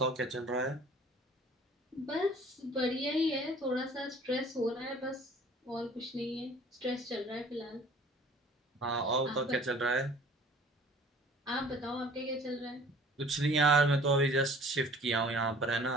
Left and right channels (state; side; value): normal; both; correlation 0.50